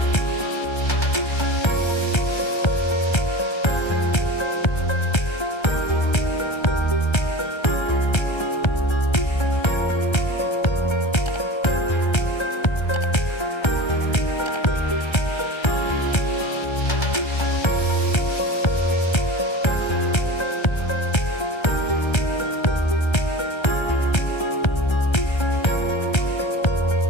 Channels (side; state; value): right; late; 1.3 ms